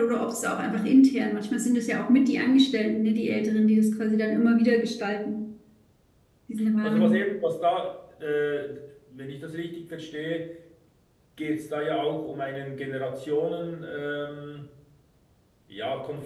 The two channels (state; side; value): identical; both; correlation 1.00